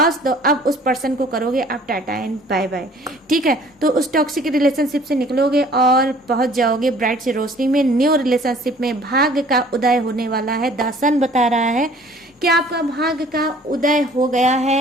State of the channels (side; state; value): both; normal; correlation 0.53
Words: तो अब उस पर्सन को करोगे आप टाटा एंड बाय बाय। ठीक है, तो उस टॉक्सिक रिलेशनशिप से निकलोगे और पहुंच जाओगे ब्राइट सी रोशनी में। न्यू रिलेशनशिप में भाग्य का उदय होने वाला है। द सन बता रहा है कि आपका भाग्य का उदय हो गया